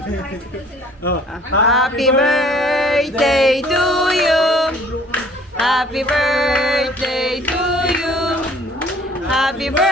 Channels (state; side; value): normal; both; correlation 0.55